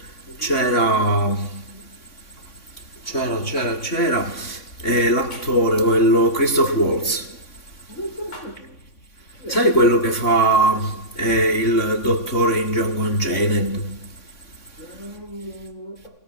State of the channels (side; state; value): right; late; 3.6 ms